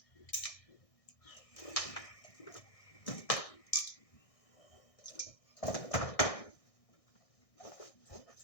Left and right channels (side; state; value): right; late; 1.6 ms